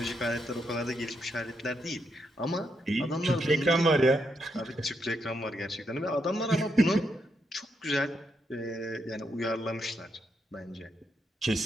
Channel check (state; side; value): normal; both; correlation 0.80